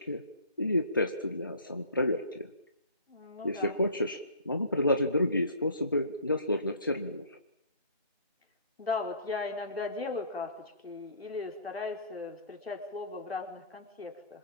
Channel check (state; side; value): inverted; both; correlation -0.50